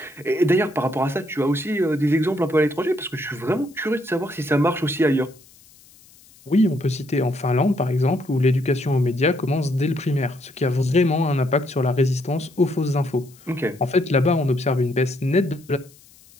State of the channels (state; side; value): noise; left; hiss, 26 dB below the sound